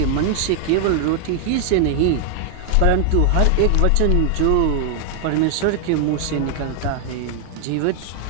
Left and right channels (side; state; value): both; different; correlation 0.00